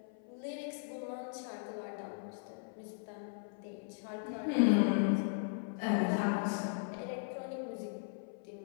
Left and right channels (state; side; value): silent; right; 53 dB below the other